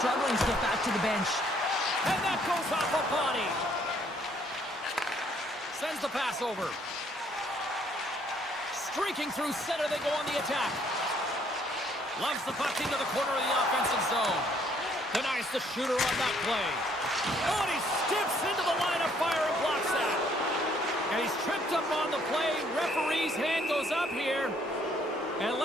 to get back to the bench. And that goes off a body. Sends the pass over. Streaking through center, they go on the attack. Loves the puck into the corner of the offensive zone. Denies the shooter on that play. Oh, and he steps into the line of fire and blocks that. And he's tripped up on the play. Referee's hand goes up here. And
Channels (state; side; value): normal; both; correlation 0.65